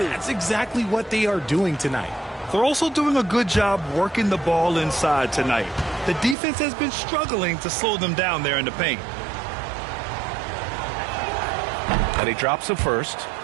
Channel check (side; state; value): left; drops out; at 6.4 s